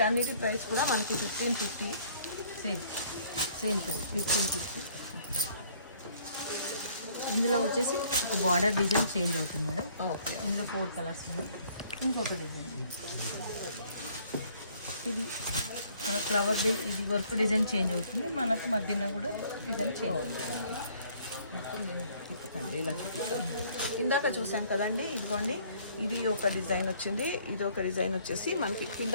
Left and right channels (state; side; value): inverted; both; correlation -0.60